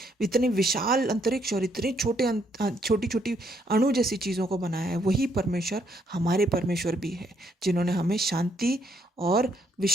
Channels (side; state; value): both; normal; correlation 0.71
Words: विशाल अंतरिक्ष और इतने छोटी छोटी अणु जैसी चीज़ों को बनाया है, वही परमेश्वर हमारे परमेश्वर भी है, जिन्होंने हमें शांति और